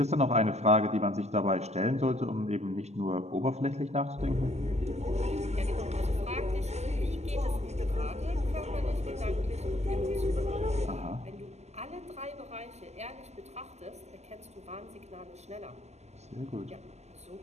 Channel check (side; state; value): left; late; 0.32 ms